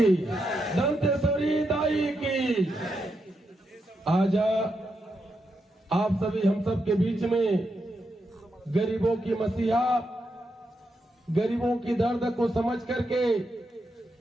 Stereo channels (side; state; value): both; normal; correlation 0.84